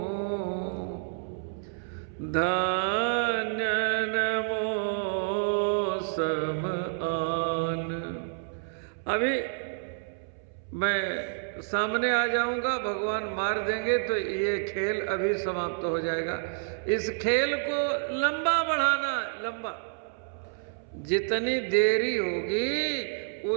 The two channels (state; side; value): silent; left; 59 dB below the other